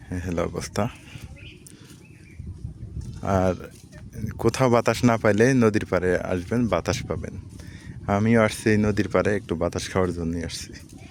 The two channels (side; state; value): both; identical; correlation 1.00